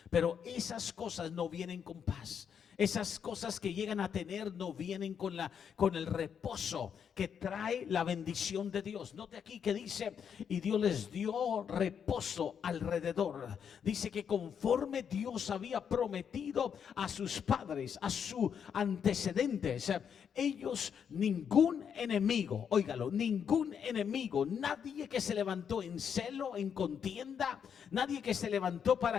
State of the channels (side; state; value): right; quieter; 7.6 dB